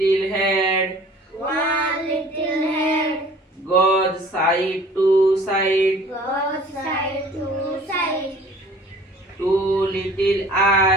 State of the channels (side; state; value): both; normal; correlation 0.49